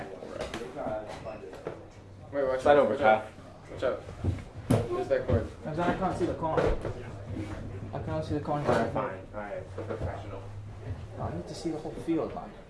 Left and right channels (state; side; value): identical; both; correlation 1.00